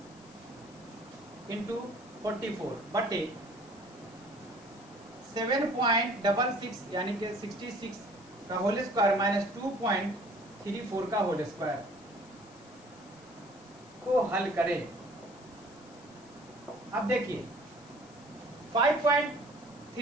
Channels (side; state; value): left; noise; hiss, 24 dB below the sound